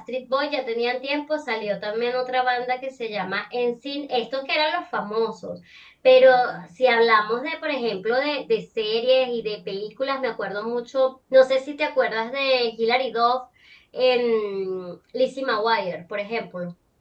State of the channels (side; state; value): both; identical; correlation 1.00